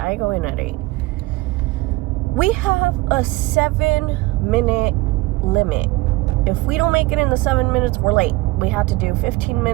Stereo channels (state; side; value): quieter; left; 20.9 dB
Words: go in at 8. We have a 7-minute limit. If we don't make it in the 7 minutes, we're late. We have to do 15